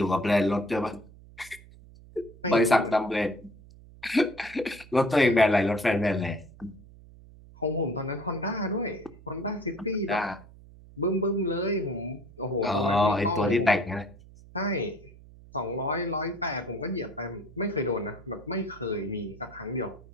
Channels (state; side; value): noise; right; hum, 21 dB below the sound